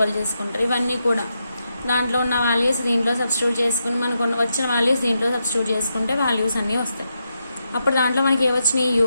చేసుకుంటారు. ఇవన్నీ కూడా దాంట్లో ఉన్న వాల్యూస్ దీంట్లో సబ్స్టిట్యూట్ చేసుకుని మనకు వచ్చిన వాల్యూస్ దీంట్లో సబ్స్టిట్యూట్ చేసుకుంటే వాల్యూస్ అన్నీ వస్తాయి. అప్పుడు దాంట్లో మనకి ఏమొచ్చినాయి,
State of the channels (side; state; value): both; inverted; correlation -0.84